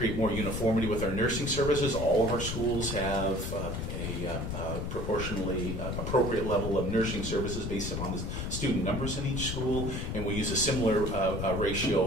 more uniformity with our nursing services. All of our schools have a proportionally appropriate level of nursing services based upon the student numbers in each school, and we use a similar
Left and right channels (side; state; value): left; noise; rumble, 4 dB below the sound